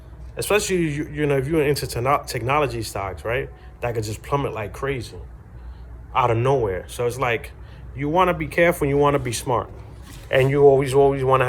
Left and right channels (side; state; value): both; identical; correlation 1.00